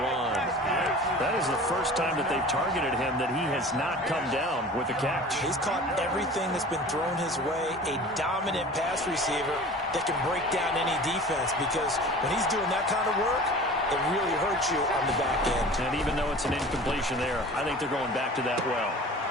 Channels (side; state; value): both; normal; correlation 0.41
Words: That is the first time that they've targeted him that he has not come down with a catch. He's caught everything that's been thrown his way. A dominant pass receiver that can break down any defense, because when he's doing that kind of work, it really hurts you on the back end. And even though it's an incompletion there, I think they're going back to that well.